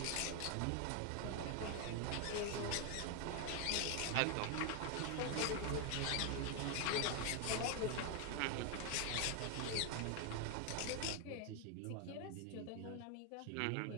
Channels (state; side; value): different; both; correlation 0.01